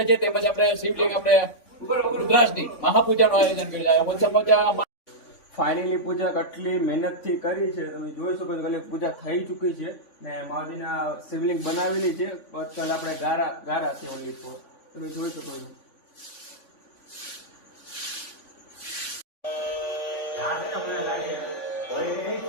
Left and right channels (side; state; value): right; late; 3.5 ms